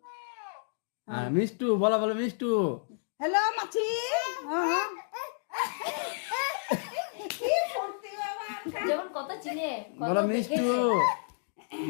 মিষ্টু বলো মিষ্টু। হ্যালো মাছি কি করতে বাবা যেমন কথা চিনে বলো মিষ্টু,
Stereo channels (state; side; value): silent; right; digital silence